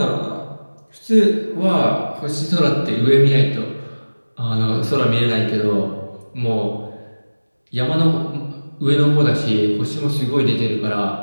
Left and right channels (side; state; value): both; inverted; correlation -1.00